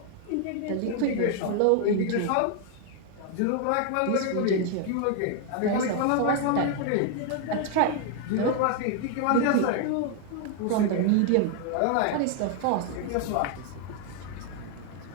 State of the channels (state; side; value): different; both; correlation 0.00